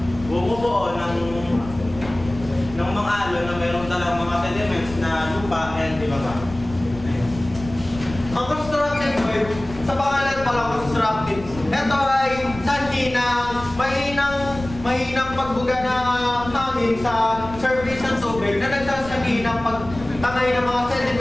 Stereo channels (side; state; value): left; noise; rumble, 14 dB below the sound